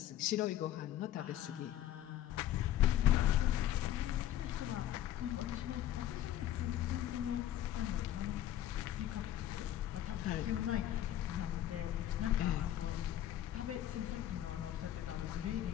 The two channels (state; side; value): quieter; right; 12.0 dB